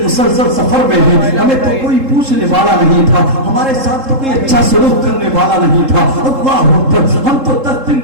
مسلسل سفر میں ہیں، ہمیں تو کوئی پوچھنے والا نہیں تھا، ہمارے ساتھ تو کوئی اچھا سلوک کرنے والا نہیں تھا۔ اللہ اکبر۔ ہم تو 10 دن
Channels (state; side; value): late; left; 3.7 ms